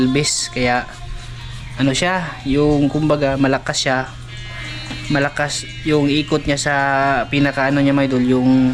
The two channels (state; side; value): identical; both; correlation 1.00